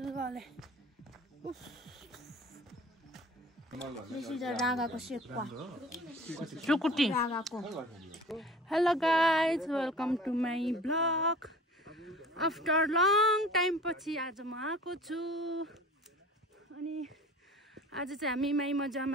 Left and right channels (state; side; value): normal; both; correlation 0.44